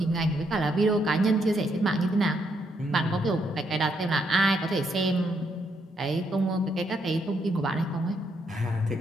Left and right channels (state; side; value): normal; both; correlation 0.76